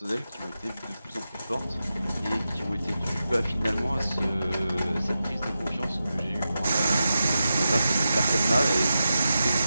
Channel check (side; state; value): both; inverted; correlation -0.91